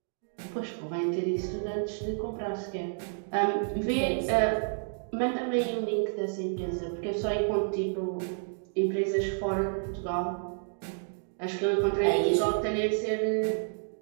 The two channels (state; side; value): silent; left; digital silence